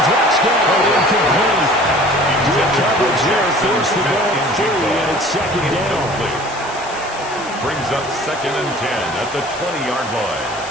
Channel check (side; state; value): left; noise; hiss, 16 dB below the sound